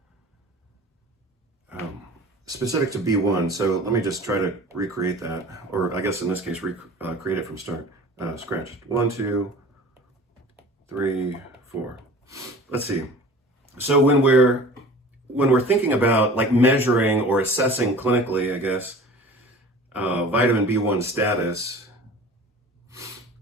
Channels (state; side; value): normal; both; correlation 0.42